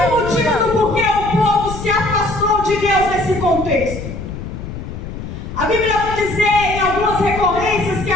motivo do porquê o povo se afastou de Deus nesse contexto. A Bíblia vai dizer em algumas recorrências que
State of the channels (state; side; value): noise; left; rumble, 9 dB below the sound